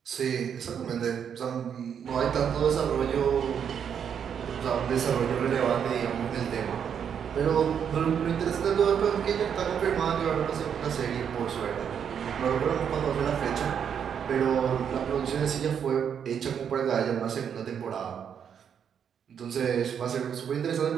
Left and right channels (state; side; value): quieter; left; 7.9 dB